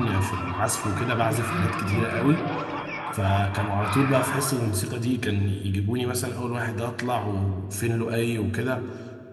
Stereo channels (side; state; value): both; identical; correlation 1.00